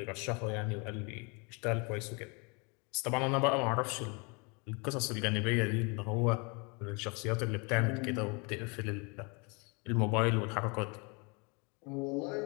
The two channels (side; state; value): right; quieter; 31.4 dB